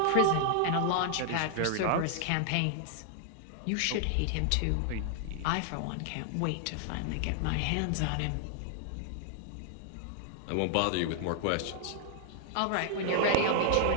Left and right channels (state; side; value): different; both; correlation 0.00